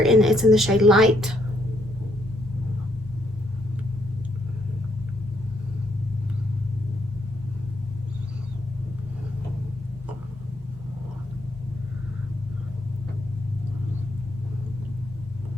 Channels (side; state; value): both; normal; correlation 0.73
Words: it's in the shade Light.